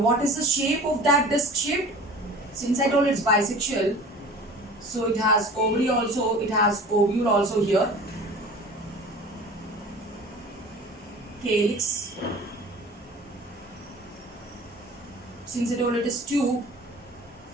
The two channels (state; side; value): normal; both; correlation 0.42